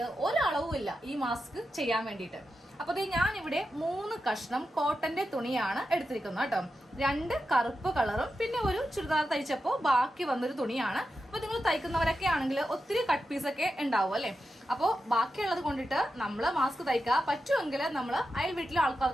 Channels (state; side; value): normal; both; correlation 0.90